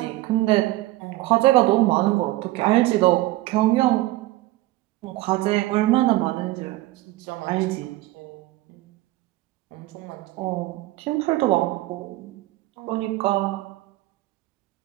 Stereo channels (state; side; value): quieter; left; 17.9 dB